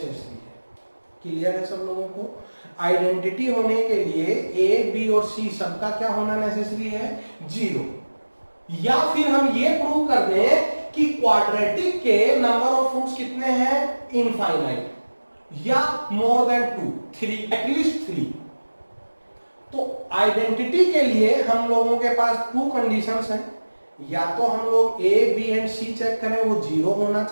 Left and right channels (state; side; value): inverted; both; correlation -1.00